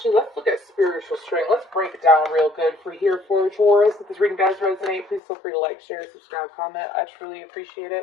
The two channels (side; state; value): right; drops out; at 5.2 s